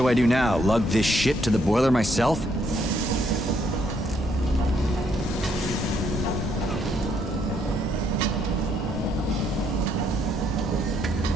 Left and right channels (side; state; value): both; normal; correlation 0.71